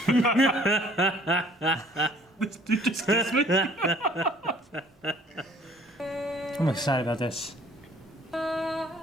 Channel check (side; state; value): both; normal; correlation 0.56